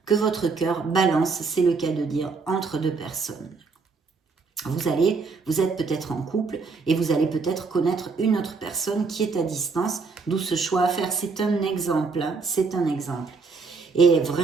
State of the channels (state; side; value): quieter; left; 4.5 dB